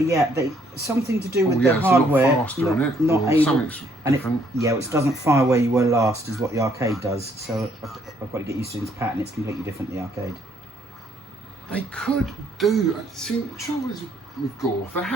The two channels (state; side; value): normal; both; correlation 0.67